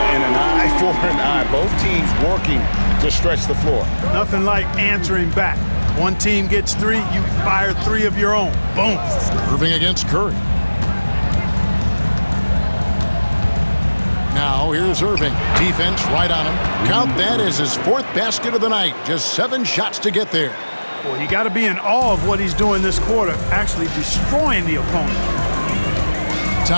an eye for an eye. Both teams working to stretch the floor. Nothing like answering back. One team gets 3, you fire 3 of your own. Boom. Irving against Curry. Now here's Irving. Defense right on him. Count that as his 4th basket of the night. Just 7 shots to get there. Well, you got to be in awe of what he's doing this quarter, actually destroying the opponent.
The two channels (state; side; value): inverted; both; correlation -1.00